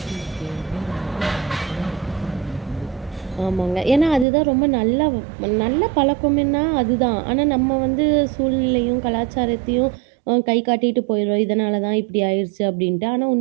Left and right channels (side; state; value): left; drops out; at 4.2 s